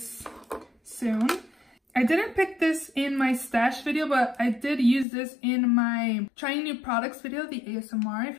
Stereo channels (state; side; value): drops out; right; at 5.1 s